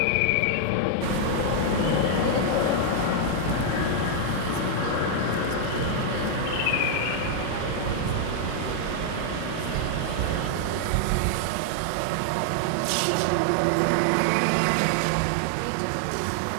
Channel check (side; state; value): both; different; correlation -0.01